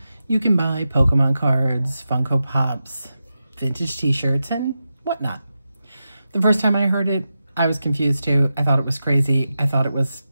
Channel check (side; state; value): both; inverted; correlation -0.90